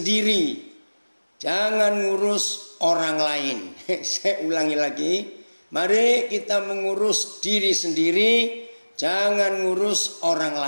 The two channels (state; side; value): inverted; both; correlation -1.00